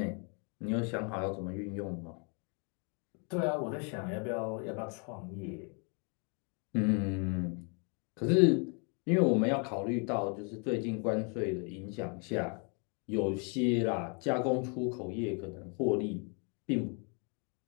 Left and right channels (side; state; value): right; quieter; 37.2 dB